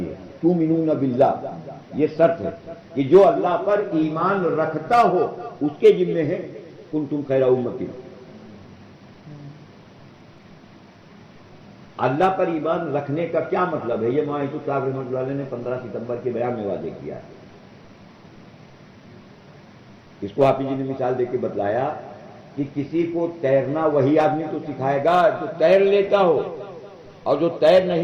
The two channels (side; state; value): both; identical; correlation 1.00